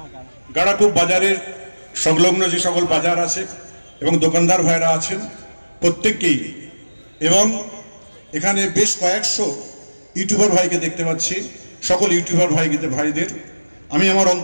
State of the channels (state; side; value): inverted; both; correlation -1.00